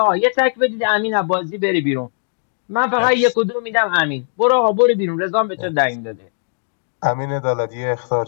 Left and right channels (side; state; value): right; silent; digital silence